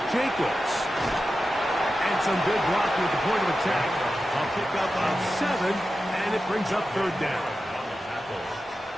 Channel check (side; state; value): both; normal; correlation 0.92